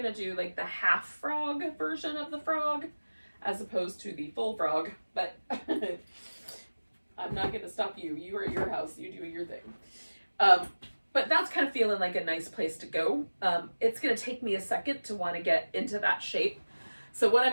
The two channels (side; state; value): both; inverted; correlation -1.00